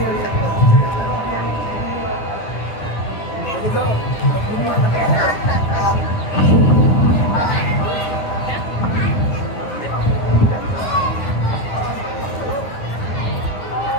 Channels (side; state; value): right; late; 9.6 ms